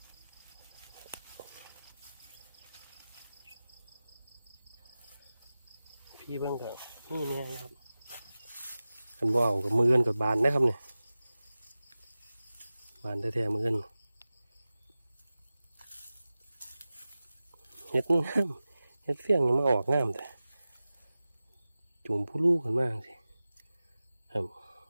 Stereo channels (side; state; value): both; inverted; correlation -0.96